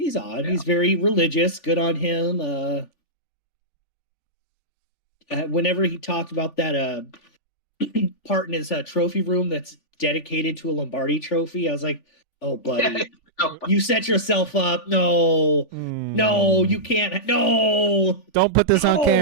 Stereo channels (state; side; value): late; right; 3.4 ms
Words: He's very religious. Good on him. Whenever he talked about that part in his trophy room that's dedicated to a Lombardi trophy, I was like, oh, buddy. You set yourself up. No, you can't. No, don't put this on